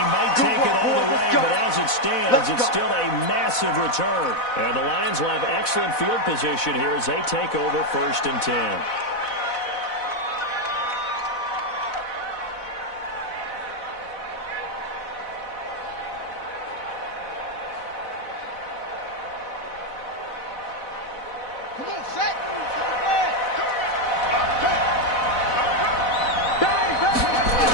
might take it all the way, but as it stands, it's still a massive return. And the Lions will have excellent field position here as they take over 1st and 10. Come on, set.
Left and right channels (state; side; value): late; right; 4.0 ms